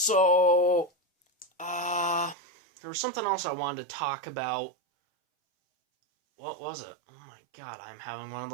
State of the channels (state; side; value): drops out; left; at 2.4 s